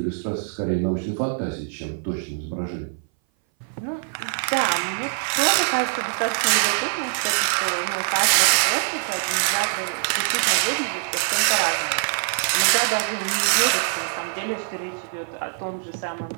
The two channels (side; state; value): left; silent; 59 dB below the other